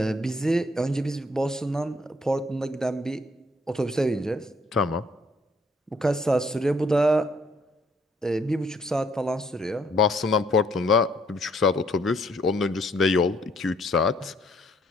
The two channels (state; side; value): normal; both; correlation 0.67